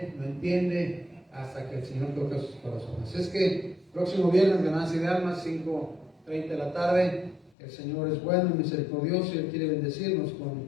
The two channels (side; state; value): right; drops out; at 7.5 s